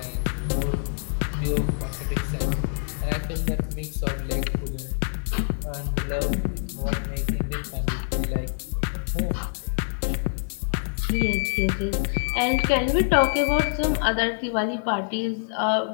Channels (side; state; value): right; silent; digital silence